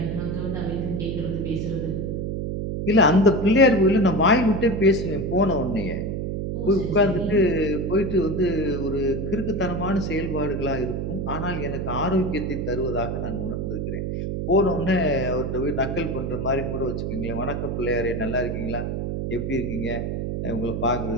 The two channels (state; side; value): noise; right; hum, 2 dB below the sound